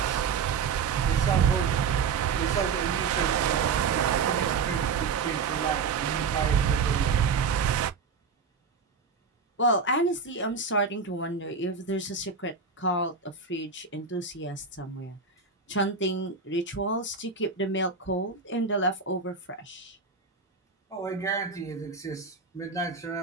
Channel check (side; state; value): left; quieter; 5.4 dB